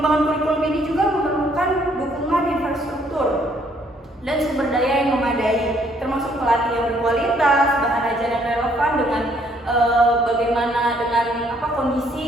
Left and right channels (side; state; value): both; normal; correlation 0.66